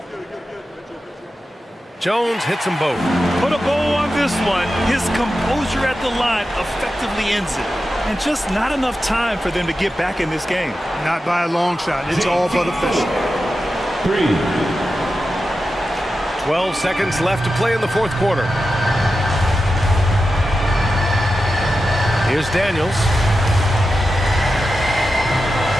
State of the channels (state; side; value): normal; both; correlation 0.91